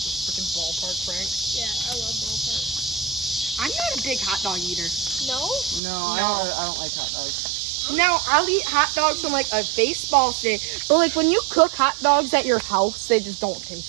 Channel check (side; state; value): left; drops out; at 5.8 s